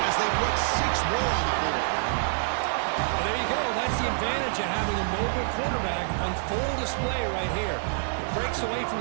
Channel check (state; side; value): silent; left; digital silence